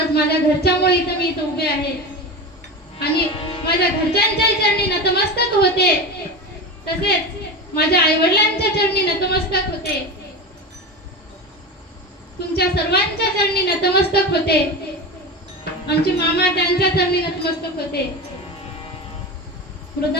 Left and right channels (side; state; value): both; normal; correlation 0.24